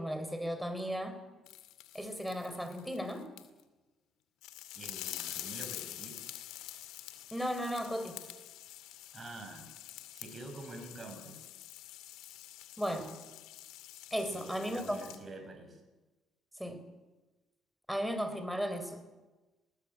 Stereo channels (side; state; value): both; normal; correlation 0.82